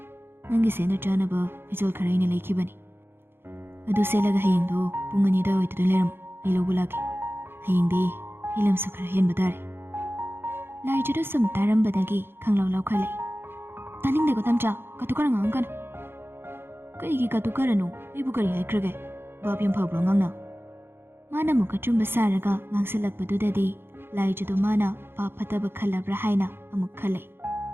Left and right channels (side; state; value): left; late; 0.11 ms